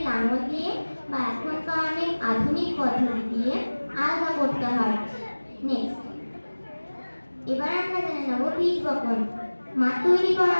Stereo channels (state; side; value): inverted; both; correlation -1.00